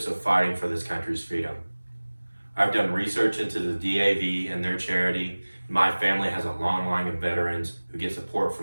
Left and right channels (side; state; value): both; inverted; correlation -1.00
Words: of fighting for this country's freedom. I've done research into the DAV and their charity. My family has a long line of veterans who get support